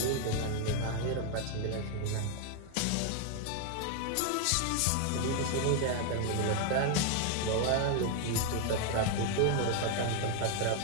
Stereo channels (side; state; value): both; different; correlation 0.00